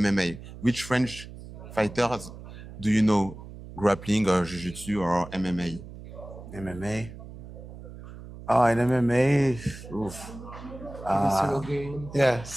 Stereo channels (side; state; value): right; noise; hum, 14 dB below the sound